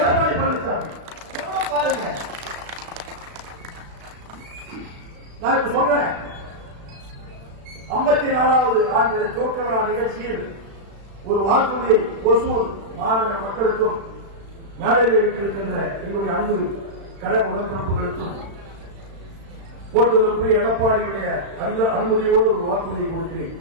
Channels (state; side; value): late; left; 36 ms